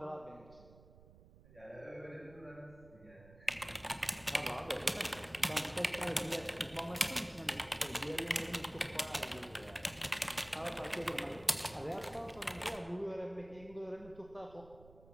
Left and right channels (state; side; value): noise; right; rumble, 21 dB below the sound